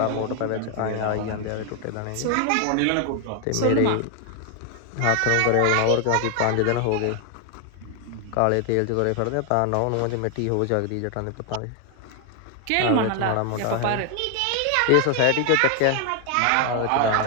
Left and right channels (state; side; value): different; both; correlation 0.00